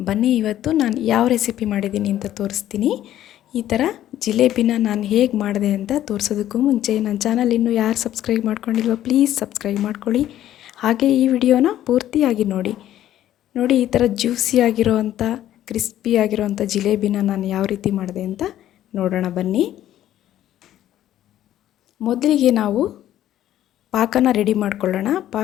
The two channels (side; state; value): right; quieter; 12.4 dB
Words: ಬನ್ನಿ ಇವತ್ತು ನಾನು ಯಾವ ರೆಸಿಪಿ ಮಾಡಿದ್ದೀನಿ ಅಂತ ತೋರಿಸ್ತೀನಿ. ಈ ಥರ ಜಿಲೇಬಿನ ನಾನು ಹೇಗೆ ಮಾಡಿದೆ ಅಂತ ತೋರಿಸೋದಕ್ಕೂ ಮುಂಚೆ ನನ್ನ ಚಾನಲ್ ಇನ್ನೂ ಯಾರು ಸಬ್ಸ್ಕ್ರೈಬ್ ಮಾಡ್ಕೊಂಡಿಲ್ವೋ ಪ್ಲೀಸ್ ಸಬ್ಸ್ಕ್ರೈಬ್ ಮಾಡ್ಕೊಳ್ಳಿ. ಹಾಗೆ ಈ ವಿಡಿಯೋನ ಪೂರ್ತಿಯಾಗಿ ನೋಡಿ. ಈ ಥರ ಜ್ಯೂಸಿ ಆಗಿರೋವಂಥ ಕ್ರಿಸ್ಪಿ ಆಗಿರೋವಂಥ ಜಿಲೇಬಿನ ನಾನು ಯಾವ ರೀತಿ ಮಾಡಿದೆ ಅಂತ ನೋಡೋಣ ಬನ್ನಿ. ಮೊದಲಿಗೆ ನಾವು ಪಾಕನ ರೆಡಿ ಮಾಡ್ಕೊಳ್ಳೋಣ.